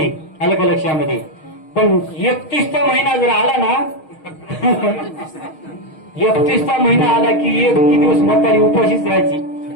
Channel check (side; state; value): right; late; 6.4 ms